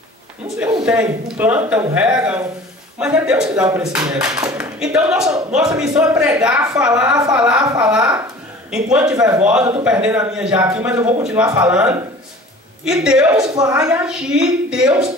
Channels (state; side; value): normal; both; correlation 0.44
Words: não tem, não planta, não rega, mas é Deus que dá o crescimento. Então nossa missão é pregar, falar. Enquanto tiver voz, eu estou perdendo a minha já aqui, mas eu vou continuar falando. E Deus vai agir, Deus